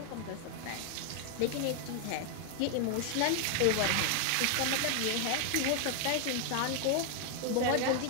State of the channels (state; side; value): different; both; correlation 0.00